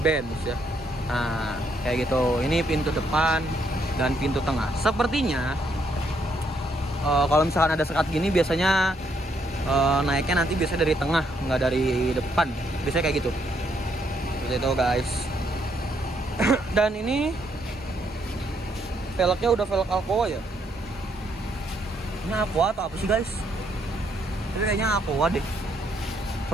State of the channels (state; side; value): normal; both; correlation 0.73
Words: ya. Nah, kayak gitu. Ini pintu depan dan pintu tengah. Sepertinya kalau misalkan ada sekat gini biasanya naiknya nanti biasanya dari tengah, nggak dari depan. Biasanya kayak gitu. Seperti itu guys. Dan ini velgnya udah velg Aqua ya. Ini Aqua atau apa sih guys? Tapi kayaknya Aqua deh.